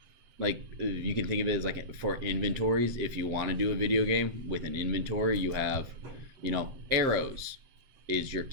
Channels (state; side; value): late; left; 7.6 ms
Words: Like you can think of it as like for inventories. If you want to do a video game with an inventory, you have, arrows is your